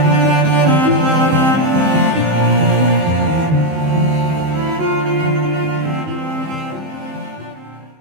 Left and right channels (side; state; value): left; late; 19 ms